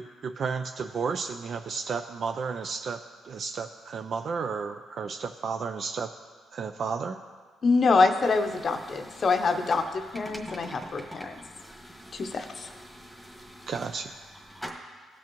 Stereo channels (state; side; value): normal; both; correlation 0.84